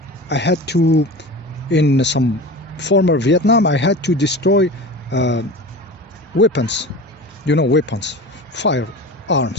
to, in some former Vietnam, I had to destroy weapons, weapons,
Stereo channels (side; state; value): both; normal; correlation 0.33